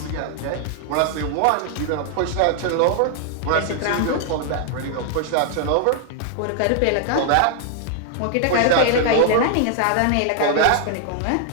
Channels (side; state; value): both; different; correlation 0.00